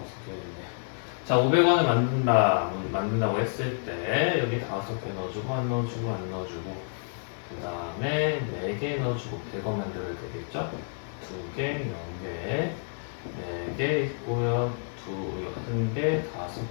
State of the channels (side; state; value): right; silent; 59 dB below the other